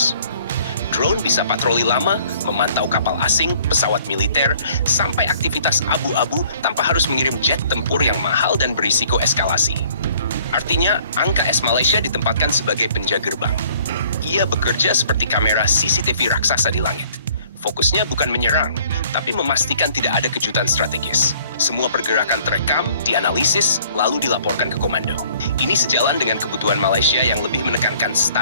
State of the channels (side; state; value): both; inverted; correlation -0.57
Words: Drone bisa patroli lama, memantau kapal asing, pesawat militer, sampai aktivitas abu-abu tanpa harus mengirim jet tempur yang mahal dan berisiko eskalasi. Artinya, angka S Malaysia ditempatkan sebagai penjaga gerbang. Ia bekerja seperti kamera CCTV raksasa di langit. Fokusnya bukan menyerang, tapi memastikan tidak ada kejutan strategis. Semua pergerakan terekam, dianalisis, lalu dilaporkan ke komando. Ini sejalan dengan kebutuhan Malaysia yang lebih menekankan